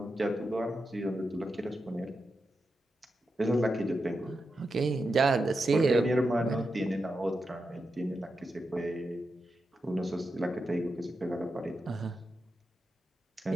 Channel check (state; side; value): normal; both; correlation 0.88